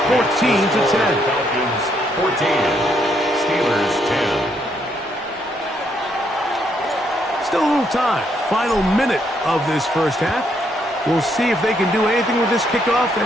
14-10. Falcons 14. Steelers 10. Still a little time. Final minute of this first half. We'll see if they can do anything with this kickoff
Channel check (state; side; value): normal; both; correlation 0.74